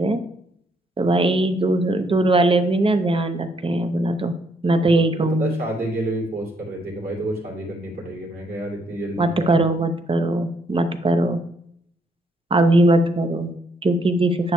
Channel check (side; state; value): both; normal; correlation 0.71